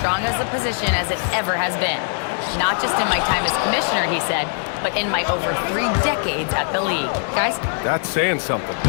as a position as it ever has been. Not just in my time as commissioner, he said, but in my over 3 decades at the league. Guys? That's saying something.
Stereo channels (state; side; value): silent; right; 65 dB below the other